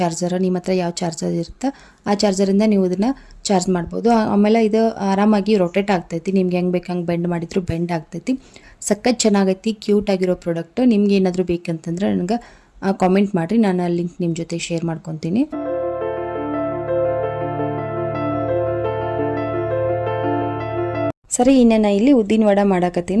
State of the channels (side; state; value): both; identical; correlation 1.00